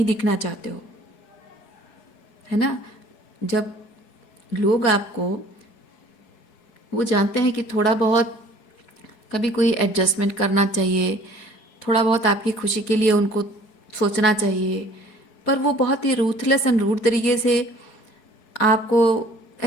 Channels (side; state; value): right; late; 4.7 ms